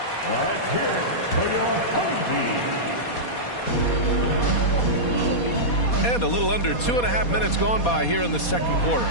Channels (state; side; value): late; right; 4.2 ms